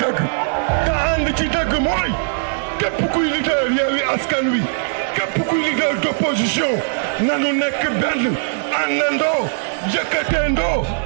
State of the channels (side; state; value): left; silent; digital silence